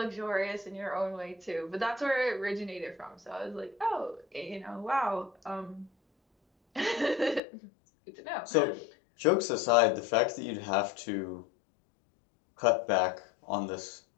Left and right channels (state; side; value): drops out; right; at 7.4 s